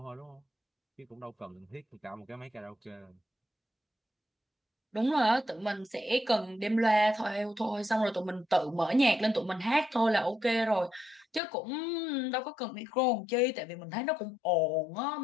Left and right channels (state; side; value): drops out; right; at 11.4 s